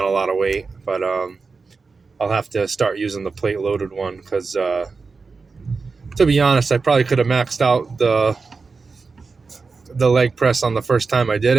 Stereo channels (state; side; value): quieter; left; 4.5 dB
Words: a lot of weight, but I'll have to start using the plate loaded one because, to be honest, I probably could have maxed out the leg press on the first time I did